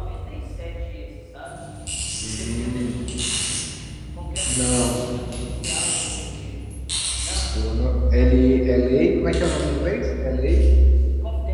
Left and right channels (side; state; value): both; identical; correlation 1.00